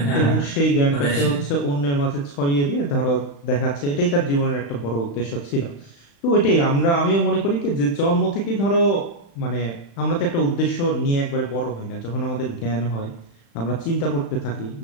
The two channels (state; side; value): late; right; 35 ms